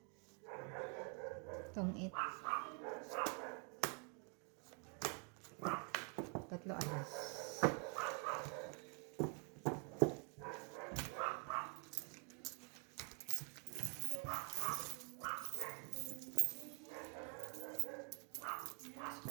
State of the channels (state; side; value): quieter; left; 35.1 dB